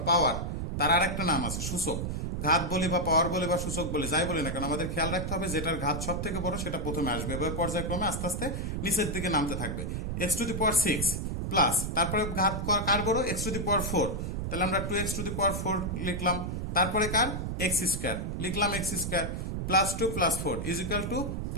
পাওয়ার, তার আর একটা নাম আছে সূচক, ঘাত বলি বা পাওয়ার বলি বা সূচক বলি যাই বলি না কেন আমাদের খেয়াল রাখতে হবে যেটার ঘাত সব থেকে বড় সেটা প্রথমে আসবে, এবার পর্যায়ক্রমে আস্তে আস্তে নিচের দিকে নামতে থাকবে। X to the power six plus তারপরে ঘাত কার বড় x to the power four, তাহলে আমরা two x to the power four লিখলাম, তারপরে কার এক্স স্কোয়ার লিখলাম x square plus two plus four is equal to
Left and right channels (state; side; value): noise; right; rumble, 3 dB below the sound